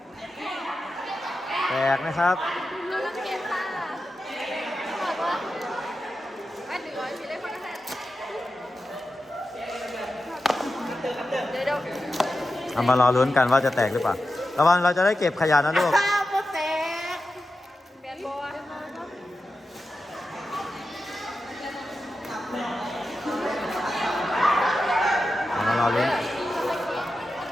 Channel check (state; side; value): normal; both; correlation 0.91